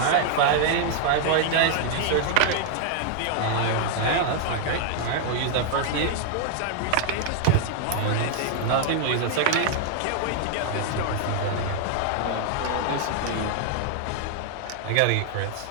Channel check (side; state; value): both; different; correlation 0.00